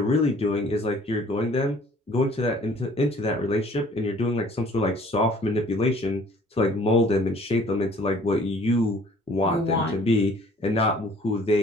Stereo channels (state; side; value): normal; both; correlation 0.54